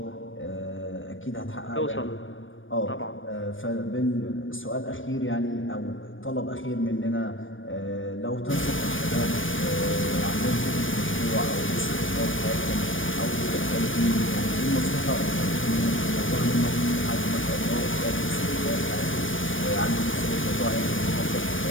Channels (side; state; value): right; late; 0.57 ms